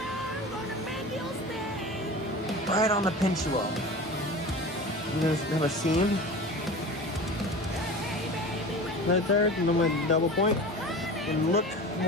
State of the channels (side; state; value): both; normal; correlation 0.34